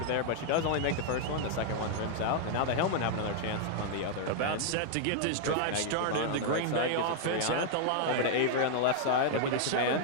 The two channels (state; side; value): different; both; correlation 0.00